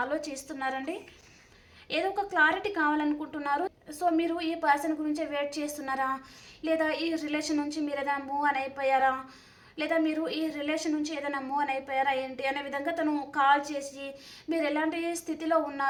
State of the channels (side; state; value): both; identical; correlation 1.00